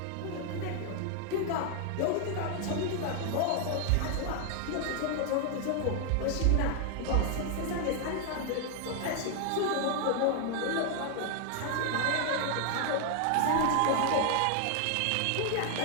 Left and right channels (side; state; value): both; different; correlation 0.00